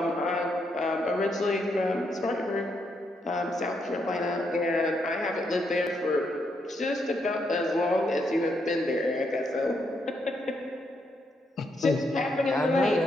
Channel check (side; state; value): both; normal; correlation 0.78